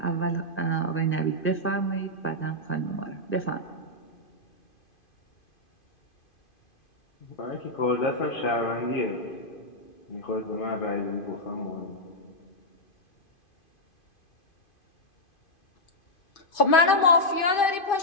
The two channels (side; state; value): right; late; 2.5 ms